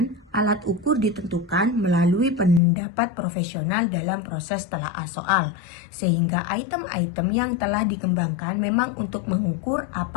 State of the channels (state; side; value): drops out; right; at 2.6 s